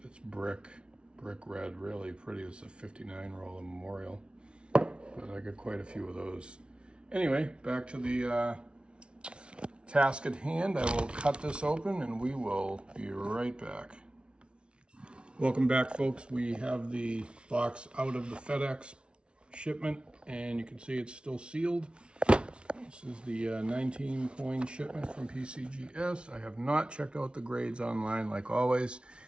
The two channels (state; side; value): late; left; 0.058 ms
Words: it's brick red, really pretty. It's a 59 roller Memorial, but I got quite a few of those. Anyway, back to the task at hand. I will cut this open and we will be right back. Welcome back, folks. We have the box out of the FedEx shipment, and you can see it's still sealed. This is the 19 coin shipment from PCGS. I have not checked out the grades online like always.